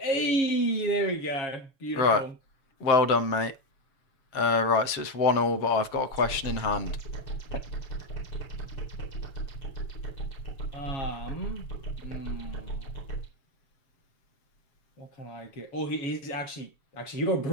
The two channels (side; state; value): right; late; 7.1 ms